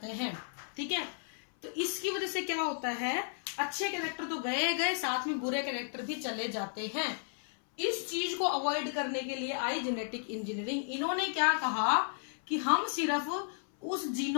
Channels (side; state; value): right; silent; 55 dB below the other